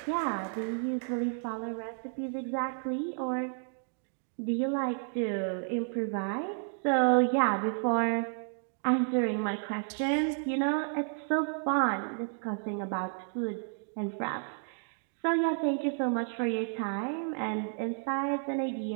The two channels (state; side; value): silent; left; 57 dB below the other